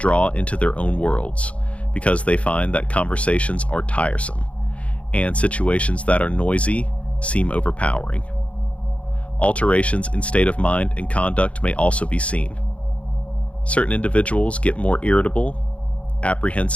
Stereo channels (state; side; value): late; right; 0.063 ms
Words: into their own worlds because they find that conversations are tiresome and situations that are noisy seem overpowering. Alterations in state of mind and conduct may also be seen. Certain individuals get more irritable,